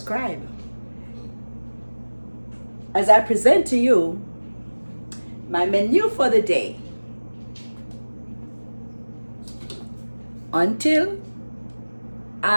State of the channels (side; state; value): both; inverted; correlation -1.00